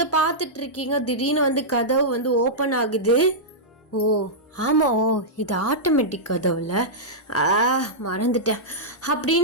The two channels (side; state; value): both; normal; correlation -0.11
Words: பார்த்துட்டு இருக்கீங்க. திடீர்னு வந்து கதவு வந்து ஓப்பன் ஆகுது. இது ஆட்டோமேட்டிக் கதவுல, மறந்துட்டேன்